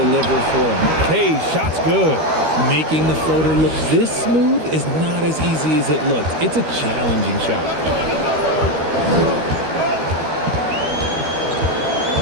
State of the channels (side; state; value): left; late; 13 ms